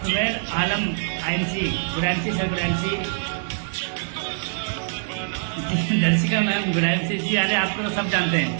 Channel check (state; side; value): silent; left; digital silence